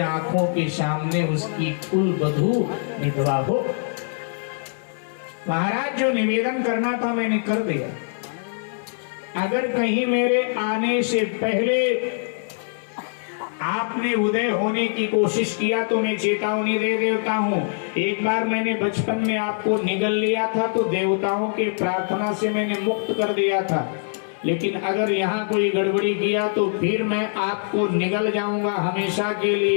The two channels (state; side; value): silent; right; 63 dB below the other